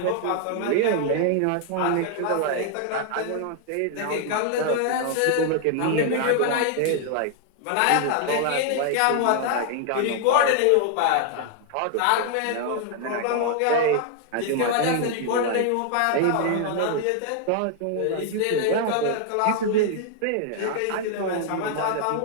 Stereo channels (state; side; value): different; both; correlation 0.00